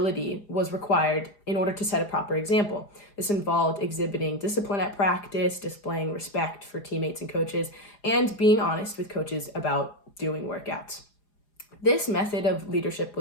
was required in order to set a proper example. This involved exhibiting discipline at practice, displaying respect for teammates and coaches, and being honest with coaches about doing workouts. This method of leadership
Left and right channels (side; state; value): right; late; 4.9 ms